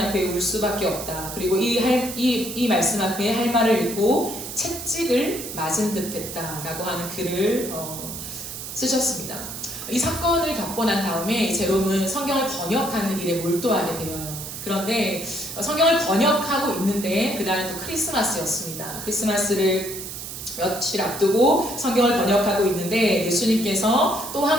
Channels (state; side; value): noise; right; hiss, 9 dB below the sound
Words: 앞에 울 수밖에 없다. 그리고 이 말씀 앞에 할 말을 읽고 채찍을 맞은 듯 했다 라고 하는 글을 쓰셨습니다. 이 사건을 겪고 난 다음에 제롬은 성경을 번역하는 일에 몰두하게 되어요. 그런데 성경을 번역하고 있는데 그날은 또 크리스마스였습니다. 크리스마스를 며칠 앞두고 성경을 번역하고 있는데 예수님께서 또